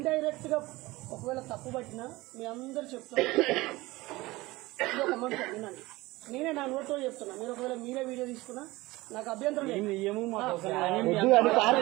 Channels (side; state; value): left; quieter; 20.3 dB